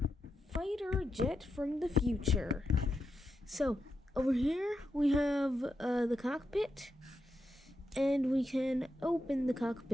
fighter jet from the future. So, over here we have the cockpit. And we can open the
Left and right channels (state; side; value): normal; both; correlation 0.86